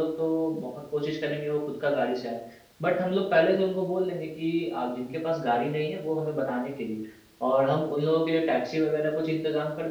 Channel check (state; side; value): identical; both; correlation 1.00